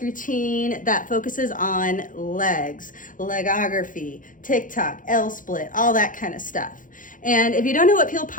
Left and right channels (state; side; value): late; right; 0.39 ms